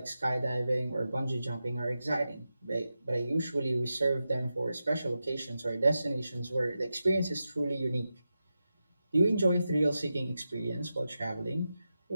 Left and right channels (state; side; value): inverted; both; correlation -0.90